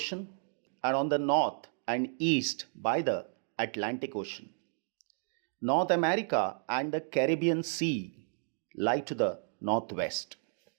and on the north and east by the Atlantic Ocean. North America and the Caribbean Sea lie to the northwest.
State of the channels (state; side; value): silent; left; digital silence